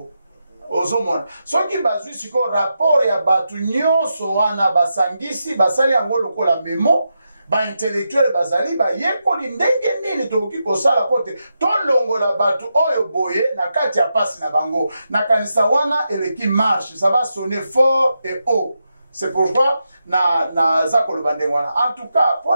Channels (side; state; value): both; inverted; correlation -0.86